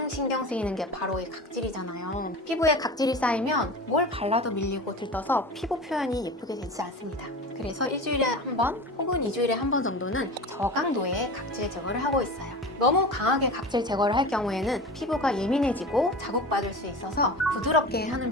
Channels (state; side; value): normal; both; correlation 0.31